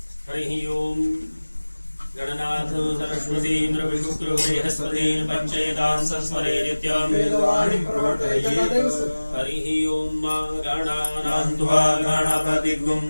हरिः ओम गणनाथ सरस्वती इंद्र विष्णु बृहस्पतिन पंचेतान् संस्मरे नित्यं वेदवाणी प्रवर्तयेत्। हरिः ओम गणानां त्वा गणपतिगुं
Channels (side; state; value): both; inverted; correlation -1.00